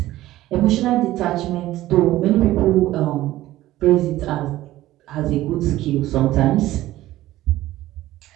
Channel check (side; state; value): left; quieter; 15.6 dB